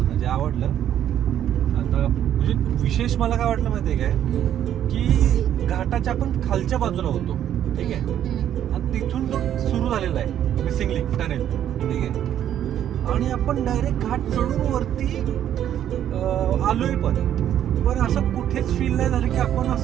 आवडलं. आता म्हणजे विशेष मला काय वाटलं माहितीये काय, की घाटाच्या आपण खालच्या बाजूला होतो, ठीक आहे. आणि तिथून तो सुरू झालेला आहे मिसिंग लिंक टनेल, ठीक आहे. आणि आपण डायरेक्ट घाट चढून वरती आलोय. पण असं कुठेच फील नाही झालं की आपण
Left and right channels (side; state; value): left; quieter; 10.6 dB